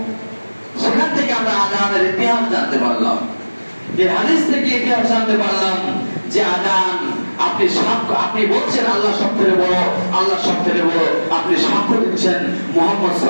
সেখান থেকে আমরা আযানের ইতিহাস জানতে পারলাম। এই হাদিস থেকে ইতিহাস জানতে পারলাম যে আযান আপনি বলছেন আল্লাহ সবথেকে বড়, আল্লাহ সবথেকে বড়, আপনি সাক্ষ্য দিচ্ছেন মুহাম্মদ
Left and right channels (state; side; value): inverted; both; correlation -1.00